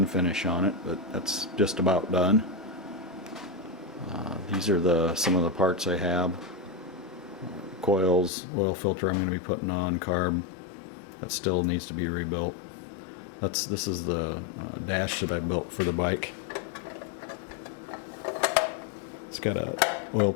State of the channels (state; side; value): drops out; right; at 8.3 s